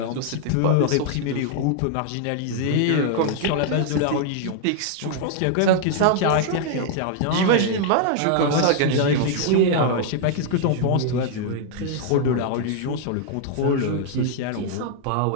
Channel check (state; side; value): different; both; correlation 0.00